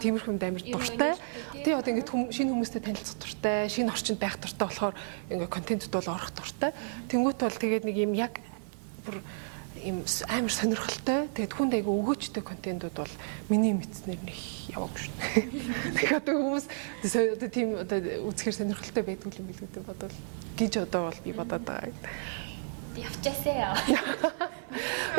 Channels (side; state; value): left; silent; 57 dB below the other